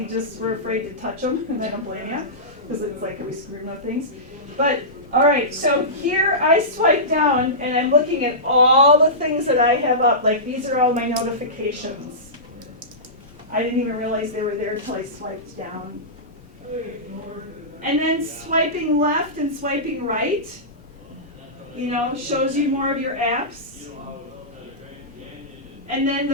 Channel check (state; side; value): normal; both; correlation -0.18